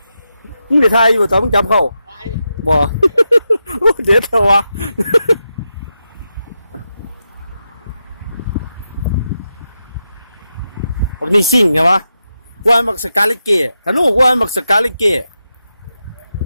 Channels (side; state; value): both; inverted; correlation -0.88